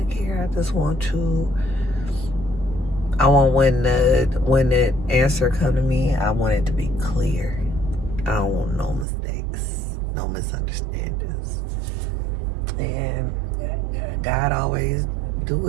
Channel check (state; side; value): drops out; left; at 9.1 s